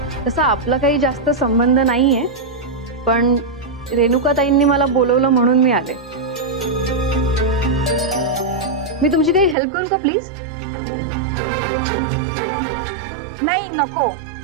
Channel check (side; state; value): left; drops out; at 9.6 s